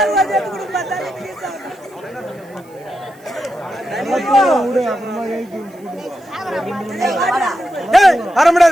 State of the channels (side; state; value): right; noise; hiss, 29 dB below the sound